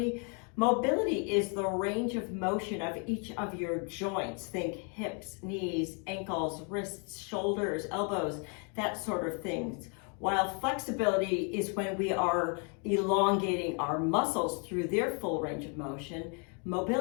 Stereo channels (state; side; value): quieter; right; 38.0 dB